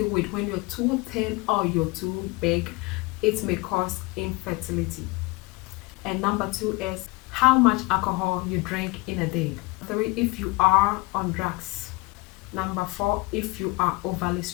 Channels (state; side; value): quieter; right; 24.4 dB